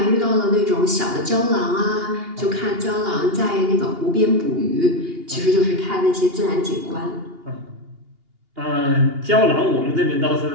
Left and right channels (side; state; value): left; late; 2.8 ms